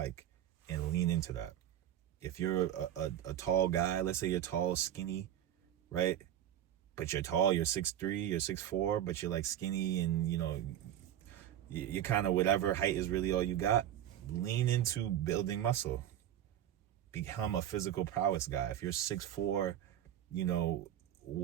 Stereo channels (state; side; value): quieter; left; 11.2 dB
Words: and lean into that. If you're a tall guy, let's say you're tall, skinny, right? But you're tall, you're 6'3", you're 6'4", but you're like skinny and, you're kind of whatever height is really all you got. Lean into building muscle. Become a physical prowess guy. If you're 6'4",